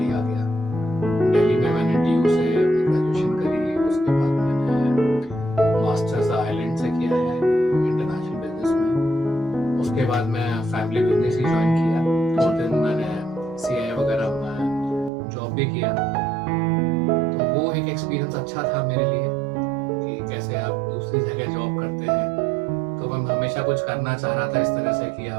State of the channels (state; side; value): drops out; left; at 15.1 s